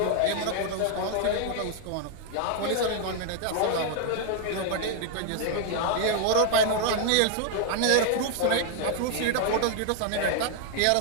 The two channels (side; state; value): both; different; correlation 0.00